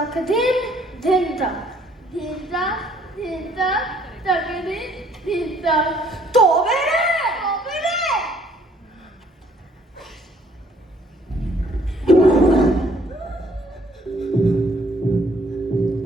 দিন, দিন তাক। ধিনতা ধিনতা তাকে দিন ধিনতা তবে রে তবে রে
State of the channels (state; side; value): normal; both; correlation 0.62